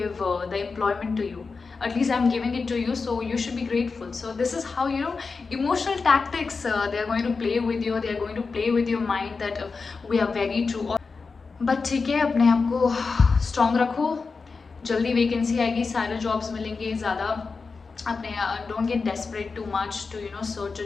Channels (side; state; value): right; quieter; 4.6 dB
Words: the employment to you, at least I'm giving it to you, so you should be grateful. So this is how emotional tactics they are going to play with you, they are going to play with your mind that we are very true. But ठीक है, अपने आप को स्ट्रॉन्ग रखो, जल्दी वैकेंसी आएगी, सारे जॉब्स मिलेंगे, ज़्यादा अपने don't get desperate too much to search